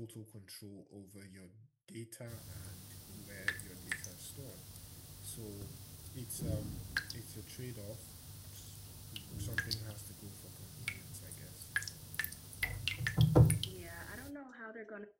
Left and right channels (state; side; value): identical; both; correlation 1.00